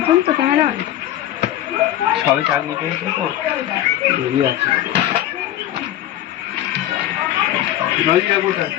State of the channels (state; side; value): quieter; right; 12.8 dB